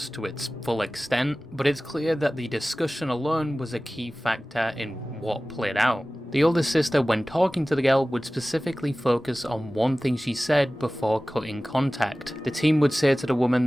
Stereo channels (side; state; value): both; normal; correlation 0.97